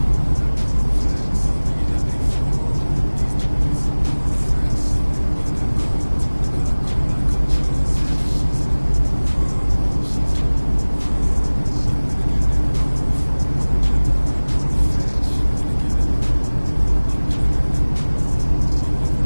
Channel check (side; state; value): both; inverted; correlation -1.00